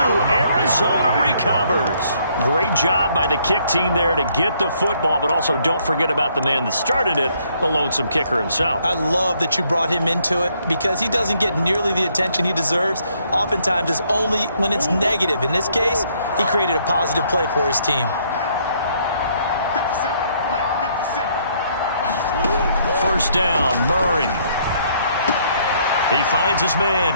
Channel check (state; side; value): inverted; both; correlation -0.68